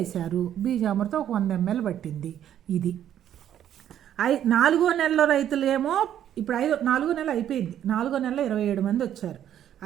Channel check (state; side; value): quieter; left; 10.6 dB